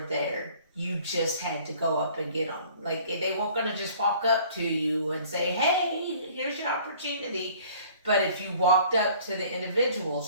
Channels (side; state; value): both; inverted; correlation -0.53